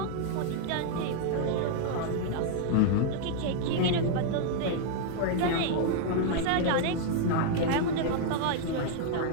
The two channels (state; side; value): different; both; correlation -0.01